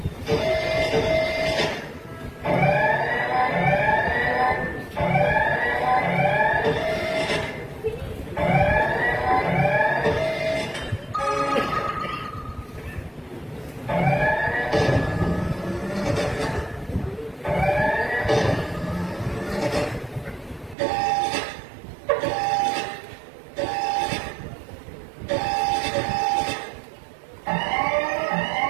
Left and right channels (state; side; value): drops out; left; at 20.8 s